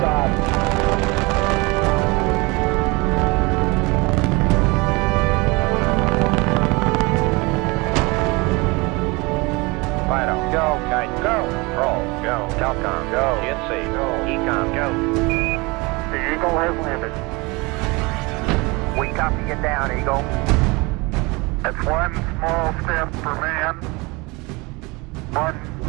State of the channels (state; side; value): quieter; left; 25.6 dB